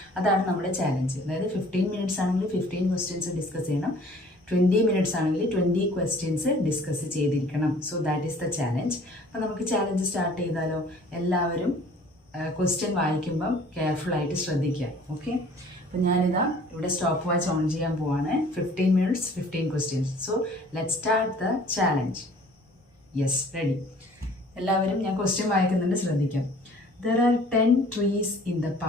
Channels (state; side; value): normal; both; correlation 0.52